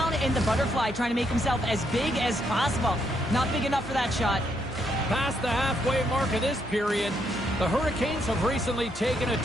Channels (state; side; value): normal; both; correlation 0.76